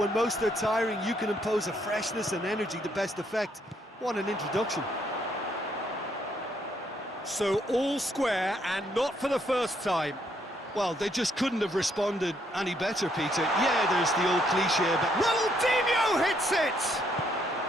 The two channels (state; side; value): normal; both; correlation 0.71